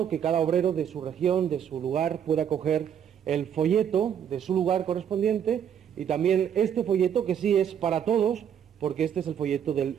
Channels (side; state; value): left; quieter; 8.8 dB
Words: que cada obrero de su región, de su lugar, pueda coger el folleto de su lugar correspondiente y también este folleto que sí es para todos, porque este es el folleto del